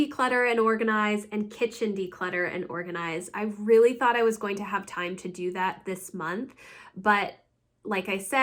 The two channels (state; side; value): identical; both; correlation 1.00